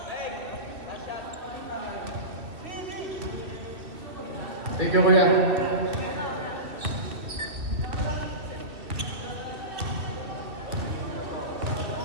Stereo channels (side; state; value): left; late; 2.5 ms